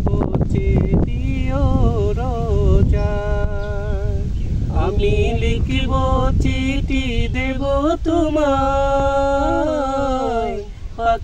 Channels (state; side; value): identical; both; correlation 1.00